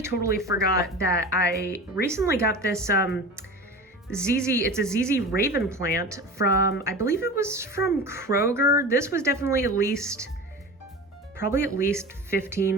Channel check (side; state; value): both; normal; correlation 0.33